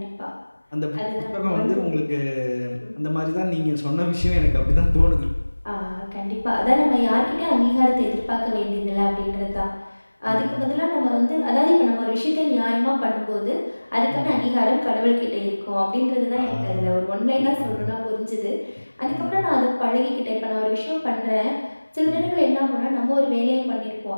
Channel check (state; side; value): inverted; both; correlation -1.00